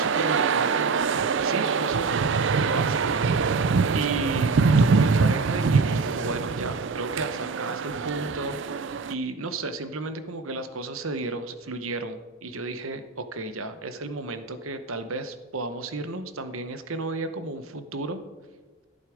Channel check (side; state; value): left; quieter; 4.2 dB